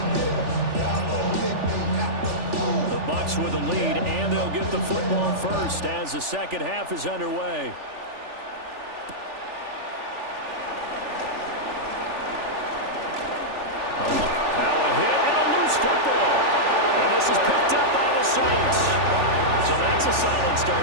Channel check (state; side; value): late; left; 3.4 ms